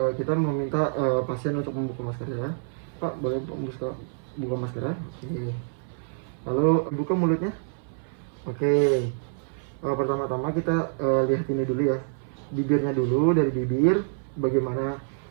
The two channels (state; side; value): silent; left; 60 dB below the other